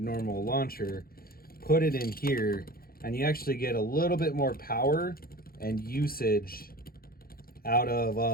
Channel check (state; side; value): late; right; 0.43 ms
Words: launcher, put it in here, and you actually get a little bit more power and usage out